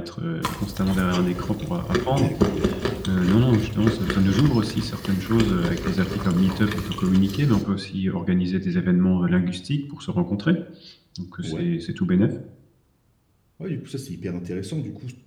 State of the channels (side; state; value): both; identical; correlation 1.00